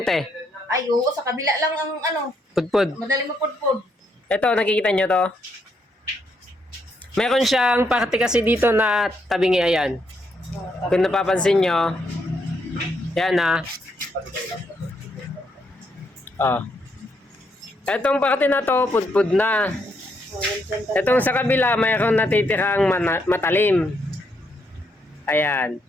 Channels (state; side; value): normal; both; correlation 0.76